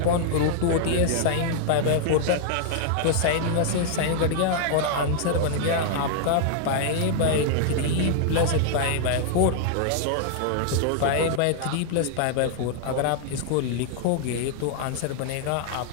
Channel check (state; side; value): different; both; correlation -0.01